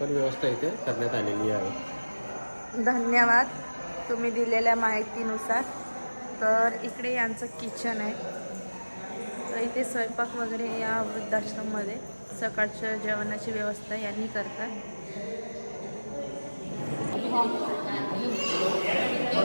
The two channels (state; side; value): inverted; both; correlation -1.00